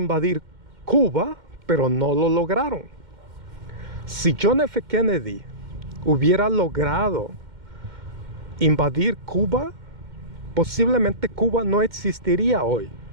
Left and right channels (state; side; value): late; left; 2.1 ms